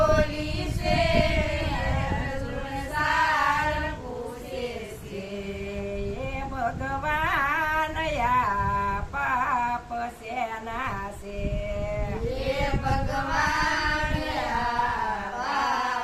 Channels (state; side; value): identical; both; correlation 1.00